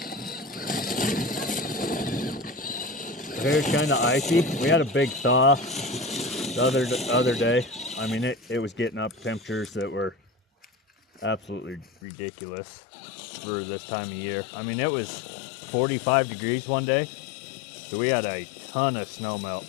Hair's kind of icy. We had a big thaw the other day. I mean, it was getting up temperatures that were absolutely ridiculous for this time of year. I mean, it was 45 degrees one day, so we had a ton of snow melt.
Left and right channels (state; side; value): drops out; right; at 11.9 s